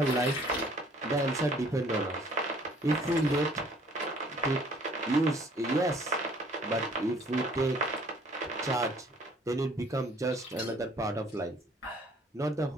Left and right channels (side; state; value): both; normal; correlation 0.57